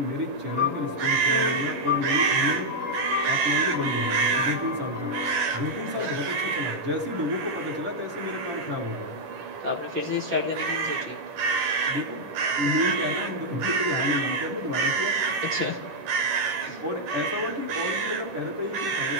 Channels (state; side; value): late; left; 10 ms